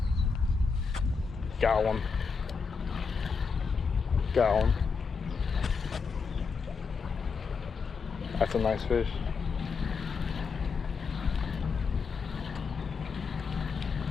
Got one. Got one. That's a nice fish.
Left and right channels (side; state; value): right; quieter; 5.2 dB